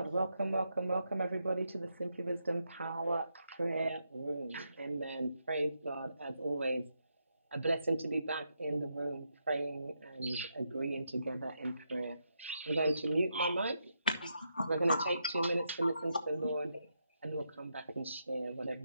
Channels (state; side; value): inverted; both; correlation -0.82